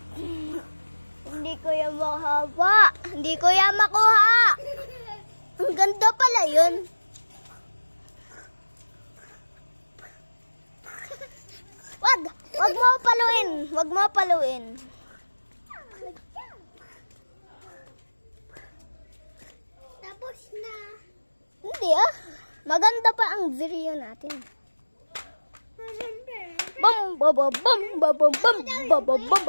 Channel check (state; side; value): inverted; both; correlation -1.00